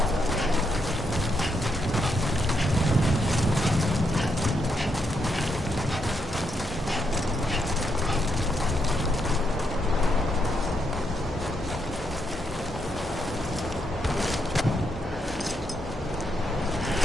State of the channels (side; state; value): both; normal; correlation 0.79